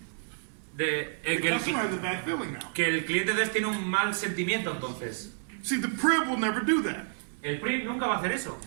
Que The customer has a bad feeling now. el cliente de tiene un mal sentimiento entonces. See, the PRIB will never do that. El PRI nunca va a hacer eso.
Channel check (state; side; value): silent; left; 58 dB below the other